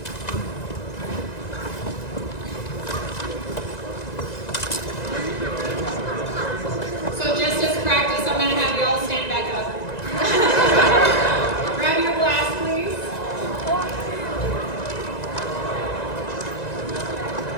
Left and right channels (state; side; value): late; right; 1.9 ms